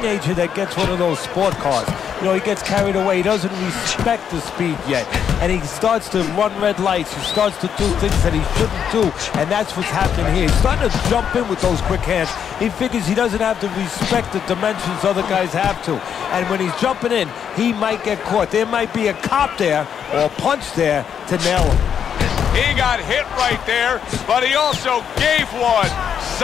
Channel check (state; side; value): quieter; right; 8.1 dB